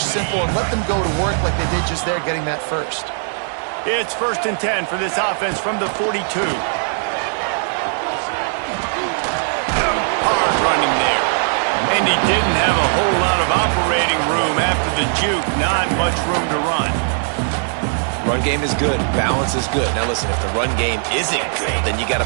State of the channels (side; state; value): left; silent; 61 dB below the other